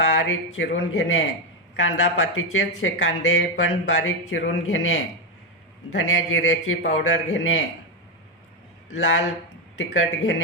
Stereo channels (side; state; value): both; normal; correlation 0.08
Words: चिरून घेणे, कांदा पातीचेच हे कांदे पण बारीक चिरून घेणे, धन्या जिऱ्याची पावडर घेणे, लाल तिखट